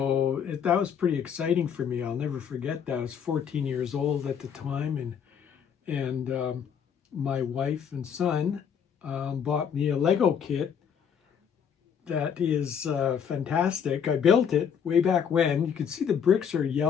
that was pretty exciting for me. I'll never forget that. I was 14 years old at the time, and my wife and son bought me a Lego kit that is fantastic. I built it way back when. You can see the bricks are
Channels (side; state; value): right; quieter; 7.6 dB